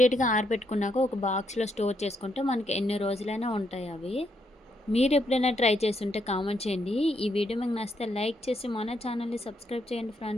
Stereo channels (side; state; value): both; normal; correlation 0.76